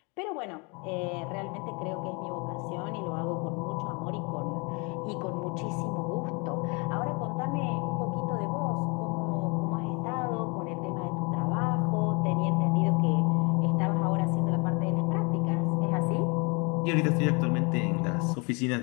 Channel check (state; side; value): quieter; right; 30.9 dB